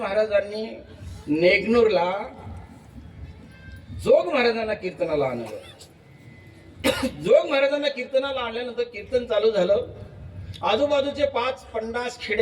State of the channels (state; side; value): identical; both; correlation 1.00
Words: नेगनूरला जोग महाराजांना कीर्तनाला आणलं. जोग महाराजांना कीर्तनाला आणल्यानंतर कीर्तन चालू झालं. आजूबाजूचे 5-50